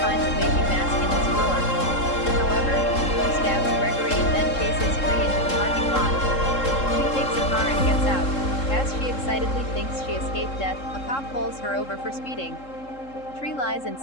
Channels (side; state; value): right; late; 3.7 ms